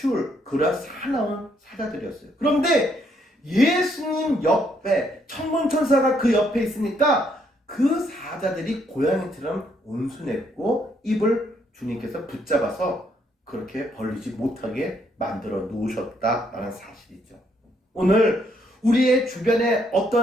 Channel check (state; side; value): normal; both; correlation 0.72